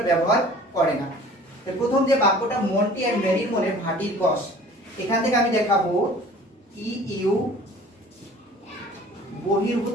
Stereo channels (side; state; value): both; normal; correlation 0.47